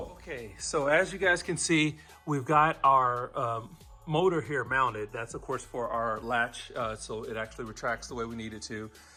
Okay, so as you guys can see, we've got our motor here mounted. That's of course for our latch, so it actually retracts the way we need it to.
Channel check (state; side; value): identical; both; correlation 1.00